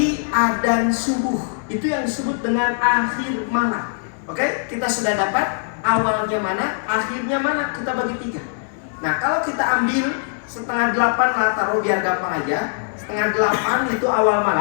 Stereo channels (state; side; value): silent; right; digital silence